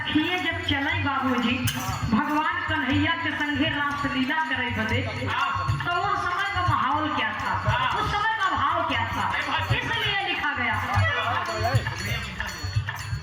जब चले बाबूजी भगवान कन्हैया के संगे रास लीला करे बदे, तो उस समय का माहौल क्या था, उस समय का भाव क्या था, इसलिए लिखा गया।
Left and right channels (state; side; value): identical; both; correlation 1.00